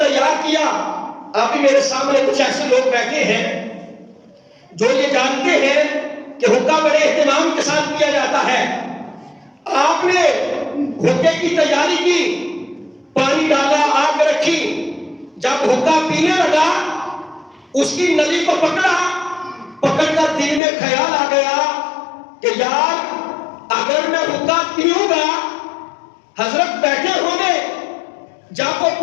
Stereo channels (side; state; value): right; drops out; at 20.6 s